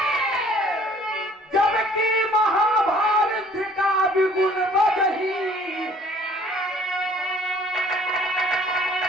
जबकि महाभारत का विगुण बजही।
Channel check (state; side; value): normal; both; correlation 0.56